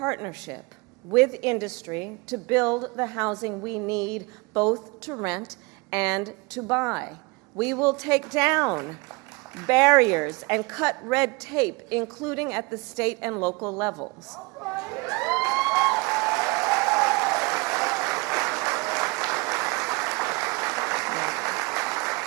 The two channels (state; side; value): quieter; left; 27.1 dB